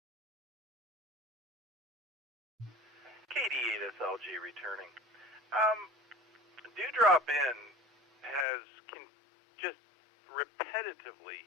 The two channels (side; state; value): right; drops out; at 8.5 s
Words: KD8SLG returning. Dewdrop in has just repetitively